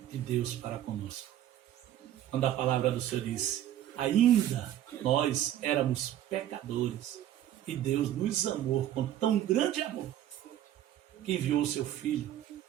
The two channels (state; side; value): quieter; left; 12.1 dB